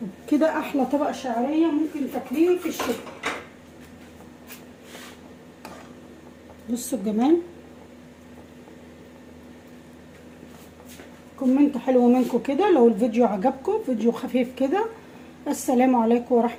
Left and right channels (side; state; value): both; identical; correlation 1.00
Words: كده احلى طبق شعريه ممكن تاكليه في الشتاء. بصوا الجمال. كومنت حلو منكم كده لو الفيديو عجبكم، فيديو خفيف كده. السلام عليكم